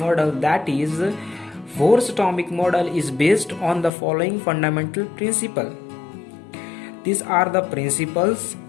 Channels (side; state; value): right; drops out; at 3.9 s